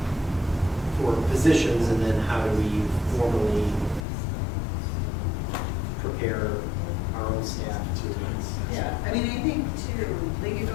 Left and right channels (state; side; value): drops out; right; at 4.0 s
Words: for positions, and then how do we formally prepare our own staff to? Yeah, I mean, I think too, like it